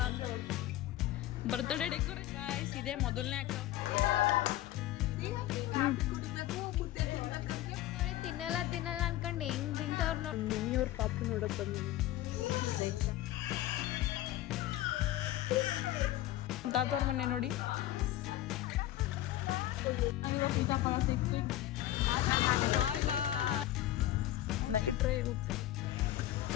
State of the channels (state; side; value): quieter; right; 14.2 dB